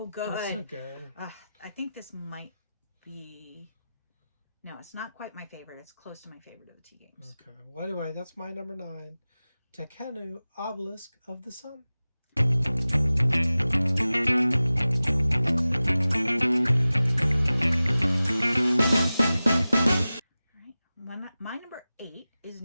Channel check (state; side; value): inverted; both; correlation -0.96